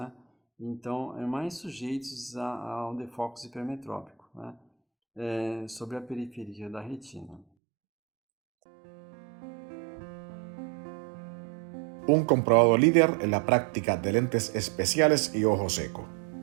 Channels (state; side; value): drops out; left; at 7.5 s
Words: Então, mais sujeitos ao defocus hipermetrópico, né? Sobre a periferia da retina. Un comprobado líder en la práctica de lentes especiales y ojo seco.